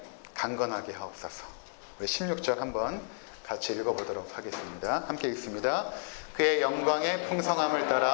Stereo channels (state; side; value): silent; right; digital silence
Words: 강건하게 하옵소서. 우리 16절 한번 같이 읽어보도록 하겠습니다. 함께 읽습니다. 그의 영광의 풍성함을